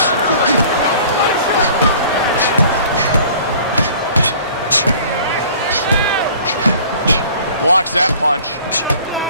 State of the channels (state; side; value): inverted; both; correlation -0.49